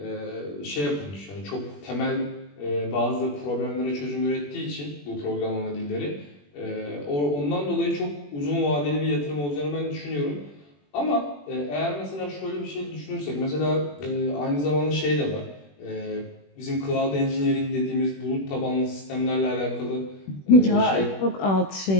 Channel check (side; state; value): right; late; 21 ms